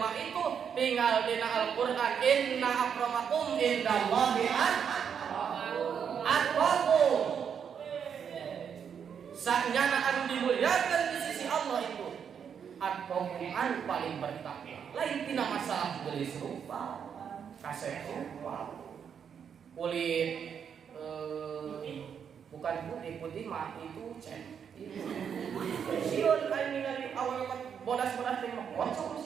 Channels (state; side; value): quieter; left; 7.5 dB